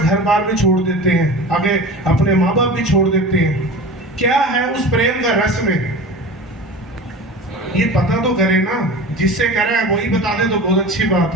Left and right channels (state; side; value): normal; both; correlation 0.34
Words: बार भी छोड़ देते हैं, आगे अपने माँ बाप भी छोड़ देते हैं। क्या है उस प्रेम का रस में, ये पता तो करे ना, जिससे करे वही बता दे तो बहुत अच्छी बात